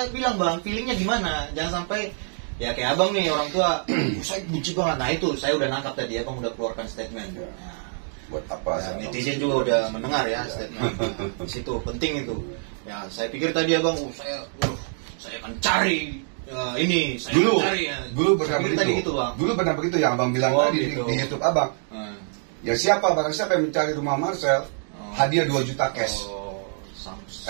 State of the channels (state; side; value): silent; left; 60 dB below the other